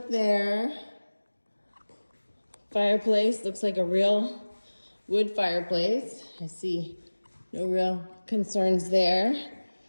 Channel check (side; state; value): both; inverted; correlation -1.00